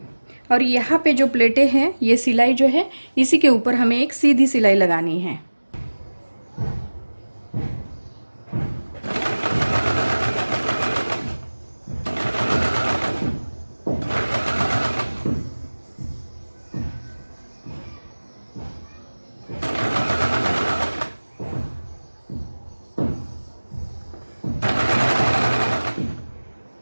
और यहाँ पे जो प्लेटें हैं ये सिलाई जो है इसी के ऊपर हमें एक सीधी सिलाई लगानी है।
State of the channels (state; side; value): inverted; both; correlation -1.00